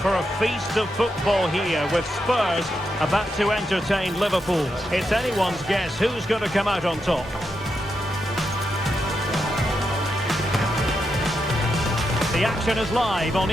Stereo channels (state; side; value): normal; both; correlation 0.84